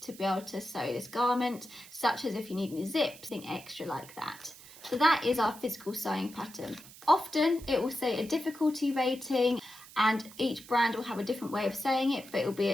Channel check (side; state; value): right; noise; hiss, 19 dB below the sound